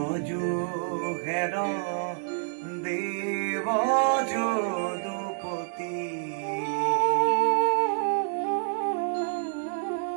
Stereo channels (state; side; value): silent; left; digital silence